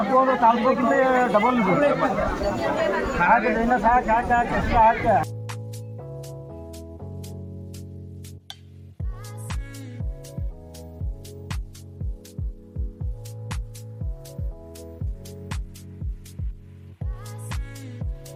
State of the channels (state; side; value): identical; both; correlation 1.00